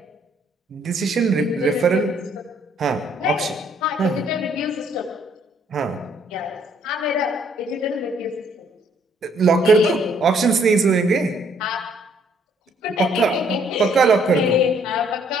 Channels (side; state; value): both; normal; correlation 0.65